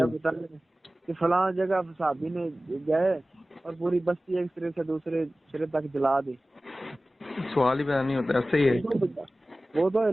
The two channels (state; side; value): normal; both; correlation 0.97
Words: بتا کہ فلاں جگہ صحابی نے گئے اور پوری بستی ایک سرے سے دوسرے سرے تک جلا دی. سوال ہی پیدا نہیں ہوتا. ایسا ہی ہے. وہ تو